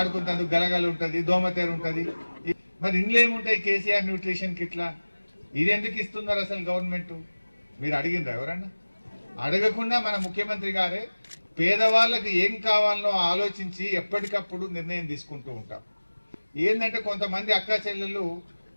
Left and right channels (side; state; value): both; inverted; correlation -1.00